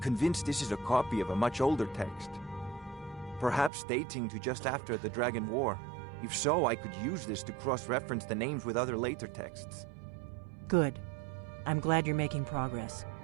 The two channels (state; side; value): drops out; left; at 3.7 s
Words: this is a copy of a much older text. Perhaps dating to just after the Dragon War. If so, I could use this to cross-reference the names with other later texts. Good. I'm glad you're making progress.